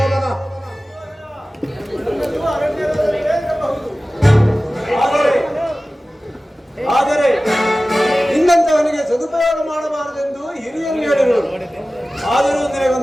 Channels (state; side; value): normal; both; correlation 0.96